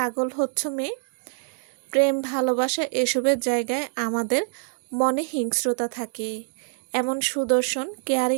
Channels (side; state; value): left; silent; digital silence